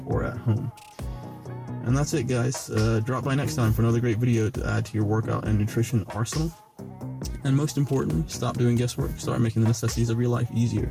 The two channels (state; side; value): identical; both; correlation 1.00